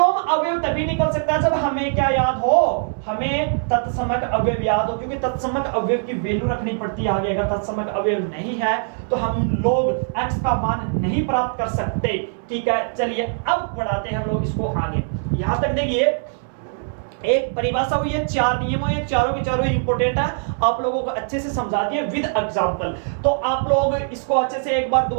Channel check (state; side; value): silent; left; 64 dB below the other